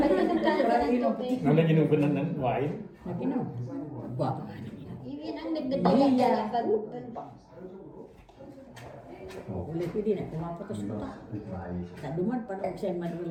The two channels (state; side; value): identical; both; correlation 1.00